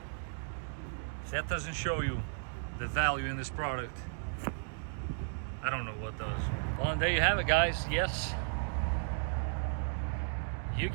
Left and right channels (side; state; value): left; silent; digital silence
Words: If that doesn't show you the value in this product, I don't know what does. Well, and there you have it, guys. Yes, you